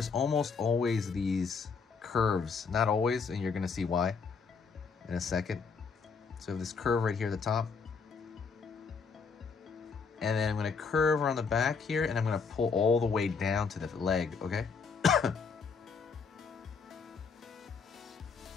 almost always these curves. Not always, and you're gonna see why in a second. So we have this curve right here at the top. And then I'm going to curve around the back here, and I'm going to pull all the way down to the leg, okay?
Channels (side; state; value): right; quieter; 5.3 dB